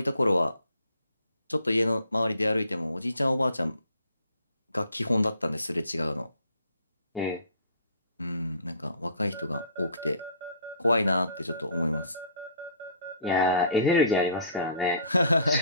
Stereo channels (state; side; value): inverted; both; correlation -0.53